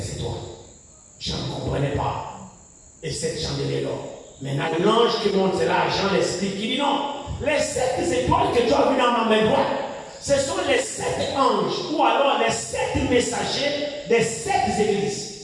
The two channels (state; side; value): identical; both; correlation 1.00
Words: étoiles. Je ne comprenais pas. Et 7 chandeliers d'or. Maintenant, l'ange qui monte, c'est là, Jean l'explique. Il dit non, les 7 étoiles que tu as vues dans ma main droite, ce sont les 7 anges, ou alors les 7 messagers des 7 églises.